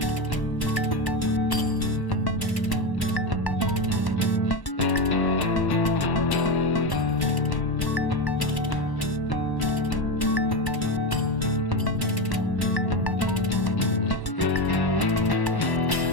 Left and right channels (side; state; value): right; late; 1.1 ms